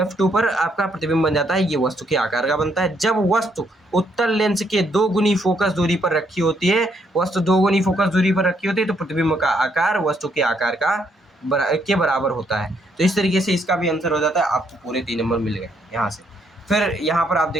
पर आपका प्रतिबिंब बन जाता है। ये वस्तु के आकार का बनता है। जब वस्तु उत्तल लेंस के 2 गुनी फोकस दूरी पर रखी होती है, वस्तु 2 गुनी फोकस दूरी पर रखी होती है, तो प्रतिबिंब का आकार वस्तु के आकार के बराबर होता है। तो इस तरीके से इसका भी आंसर हो जाता है। आपको पूरे 3 नंबर मिल गए यहाँ से। फिर यहाँ पर आप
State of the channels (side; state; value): both; normal; correlation 0.72